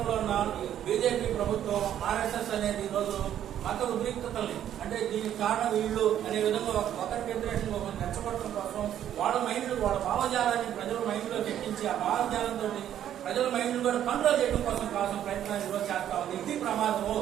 ఉన్న బీజేపీ ప్రభుత్వం, ఆర్ఎస్ఎస్ అనేది ఈరోజు మత ఉద్రిక్తతల్ని అంటే దీనికి కారణం వీళ్ళు అనే విధంగా ఒకరికి వ్యతిరేకంగా ఒకరిని రెచ్చగొట్టడం కోసం వాళ్ళ మైండ్, వాళ్ళ భావజాలాన్ని ప్రజల మైండ్ లో ఎక్కించి ఆ భావజాలంతో ప్రజల మైండ్ కూడా కంట్రోల్ చేయడం కోసం ప్రయత్నాలు ఈరోజు చేస్తా ఉంది. ఇది ప్రమాదము.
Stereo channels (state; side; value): quieter; left; 10.7 dB